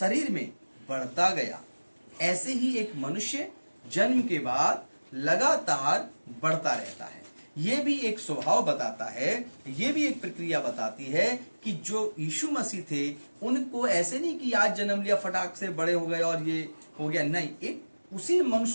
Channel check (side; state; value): both; inverted; correlation -1.00